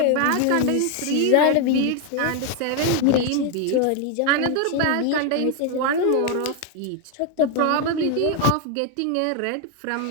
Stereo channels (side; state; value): both; different; correlation 0.01